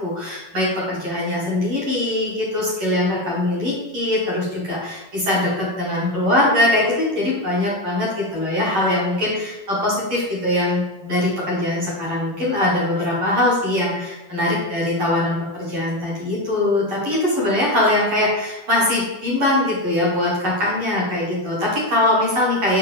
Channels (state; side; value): late; left; 10 ms